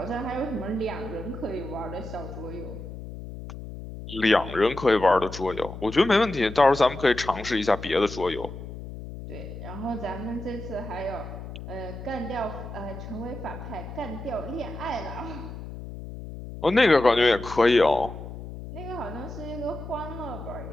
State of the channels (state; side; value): noise; left; hum, 11 dB below the sound